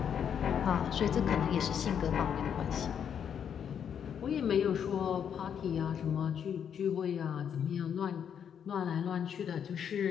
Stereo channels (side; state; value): right; quieter; 8.2 dB